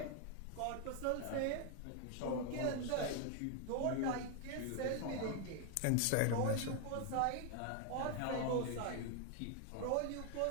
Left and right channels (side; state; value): both; different; correlation 0.01